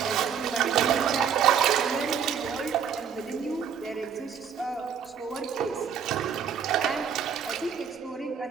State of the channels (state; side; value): quieter; left; 7.5 dB